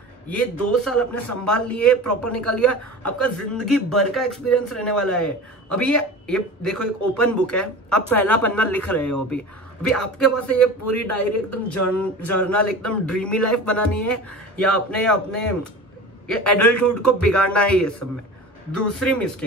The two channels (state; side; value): normal; both; correlation 0.34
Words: ये 2 साल अपने संभाल लिए, प्रॉपर निकाल लिया, आपका जिंदगी भर का एक्सपीरियंस रहने वाला है। अभी ये देखो, एक ओपन बुक है, आप पहला पन्ना लिख रहे हो। अभी आपके पास ये पूरी डायरी एकदम जर्नल, एकदम ड्रीमी लाइफ बनानी है, या अपने ये एडल्टहुड को बिगाड़ना है ये सब में। दूसरी